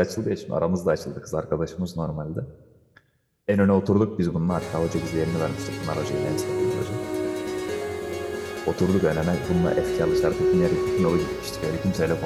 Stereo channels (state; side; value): identical; both; correlation 1.00